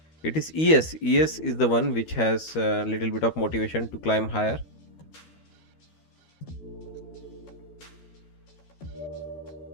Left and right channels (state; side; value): late; right; 13 ms